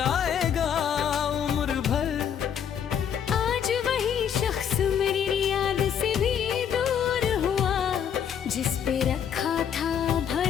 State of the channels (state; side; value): quieter; right; 8.4 dB